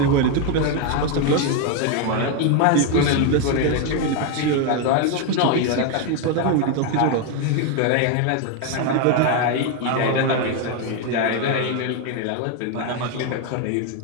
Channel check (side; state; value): both; different; correlation 0.01